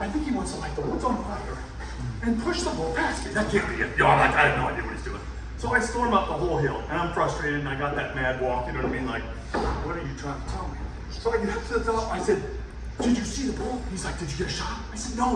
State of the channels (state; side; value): identical; both; correlation 1.00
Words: think he wants to light the woods on fire and push the bull past me. That can't be it. I'm like, I have no idea what he's doing. So I storm up the whole hill, and I'm frustrated, and I got that mad walk, you know what I mean? Like, what are you trying to tell me? So I get up to the top, I said, did you see the bull? He's like, did you get a shot? I said,